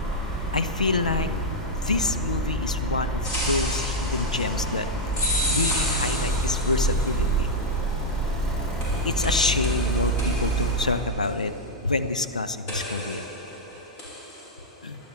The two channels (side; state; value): both; normal; correlation -0.03